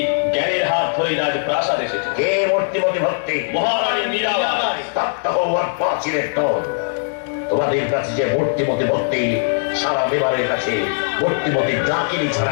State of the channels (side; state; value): right; silent; digital silence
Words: জ্ঞানের হাত ধরে রাজ প্রাসাদ এসেছে। কে মূর্তিমতি ভক্তি? মহারানী মীরাবাই। তপ্ত হওয়ার পাঁচিলের দল। তোমাদের কাছে যে মূর্তিমতি ভক্তি, সারা বিবারের কাছে মূর্তিমতি ডাকিনি ছাড়া